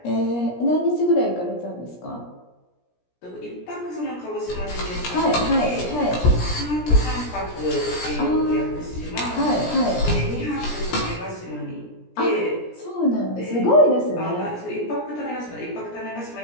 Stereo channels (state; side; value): late; right; 17 ms